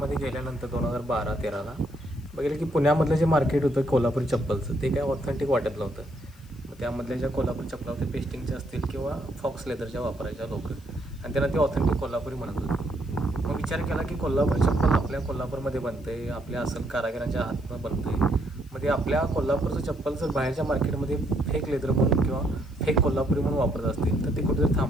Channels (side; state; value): left; noise; hiss, 28 dB below the sound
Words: गेल्यानंतर 2012-13ला बघितलं की पुण्यामधलं जे मार्केट होतं कोल्हापुरी चप्पलचं, ते काय ऑथेंटिक वाटत नव्हतं. मग त्यामधल्या ज्या कोल्हापुरी चप्पला होत्या, पेस्टिंगच्या असतील किंवा फॉक्स लेदरच्या वापरायच्या लोक, आणि त्यांना ते ऑथेंटिक कोल्हापुरी म्हणत होते. मग विचार केला की कोल्हापुरी चप्पल आपल्या कोल्हापूरमध्ये बनते, आपल्या असल कारागिरांच्या हातनं बनते. मग ते आपल्या कोल्हापूरचं चप्पल जर बाहेरच्या मार्केटमध्ये फेक लेदर म्हणून किंवा फेक कोल्हापुरी म्हणून वापरत असतील, तर ते कुठेतरी